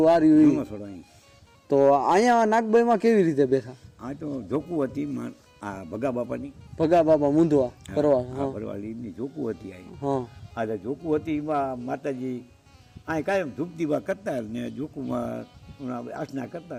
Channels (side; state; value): both; identical; correlation 1.00